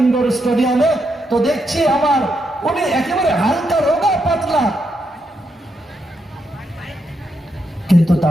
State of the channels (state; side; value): normal; both; correlation 0.81